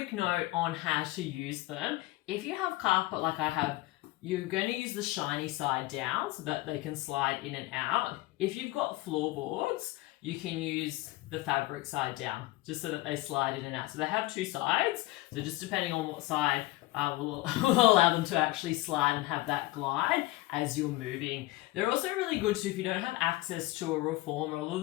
note on how to use them. If you have carpet like I have, you're going to use the shiny side down so that they can slide in and out. If you've got floorboards, you can use the fabric side down just so that they slide in and out. So they have two sides. So just depending on what side will allow them to actually slide and have that glide as you're moving. They're also really good too if you don't have access to a reformer. A lot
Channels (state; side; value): quieter; right; 18.7 dB